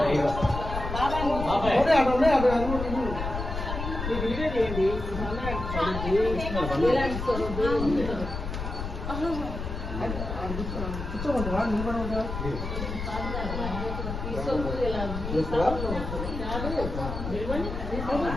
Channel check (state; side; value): noise; left; rumble, 5 dB below the sound